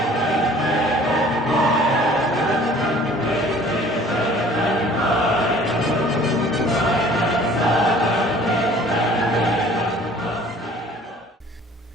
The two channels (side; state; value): both; normal; correlation 0.51